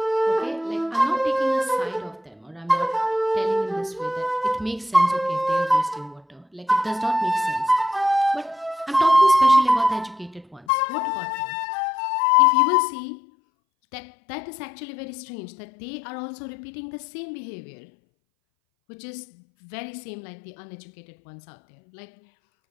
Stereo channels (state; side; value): drops out; right; at 10.7 s